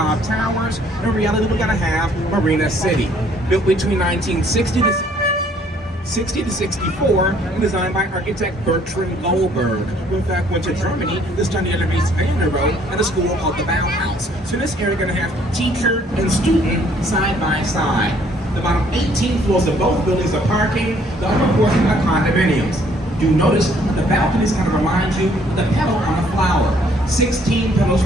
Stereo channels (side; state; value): both; normal; correlation 0.62